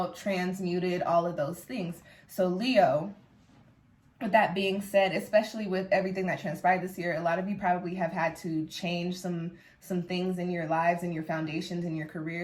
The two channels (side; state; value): both; identical; correlation 1.00